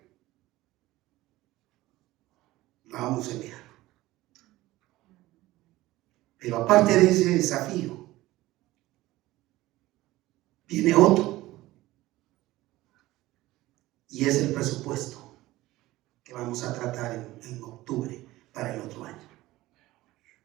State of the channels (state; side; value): quieter; left; 17.5 dB